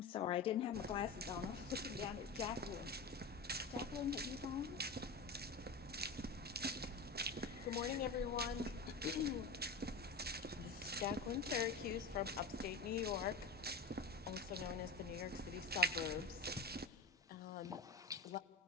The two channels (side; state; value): right; quieter; 3.5 dB